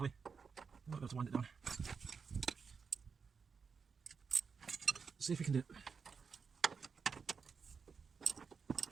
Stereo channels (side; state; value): left; quieter; 5.6 dB